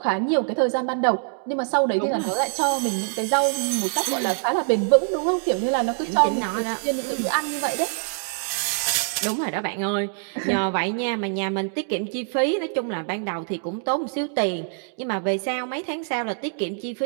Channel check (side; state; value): left; silent; 62 dB below the other